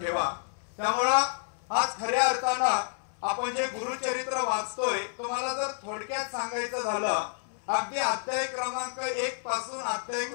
त्यामुळं आज खऱ्या अर्थानं आपण जे गुरुचरित्र वाचतोय, तुम्हाला जर थोडक्यात सांगायचं झालं, अगदी अध्याय क्रमांक 1 पासून अध्याय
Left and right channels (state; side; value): silent; right; 58 dB below the other